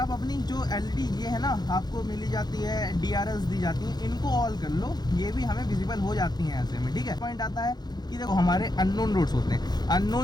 अपनी जो एलईडी ये है ना आपको मिली जाती है, डीआरएल्स दी जाती हैं, इनको ऑल कर लो, ये भी हमें विजिबल हो जाती हैं ऐसे में। ठीक है, पॉइंट आता है कि देखो हमारे अननोन रोड्स होते हैं,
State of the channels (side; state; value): right; late; 0.20 ms